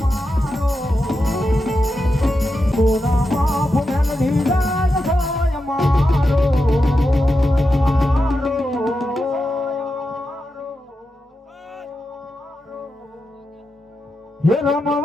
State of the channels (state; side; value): normal; both; correlation 0.88